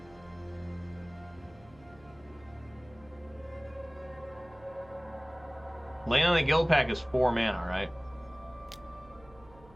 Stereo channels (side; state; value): right; noise; hum, 24 dB below the sound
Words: Leyline on the Guild Pack is 4 mana, right?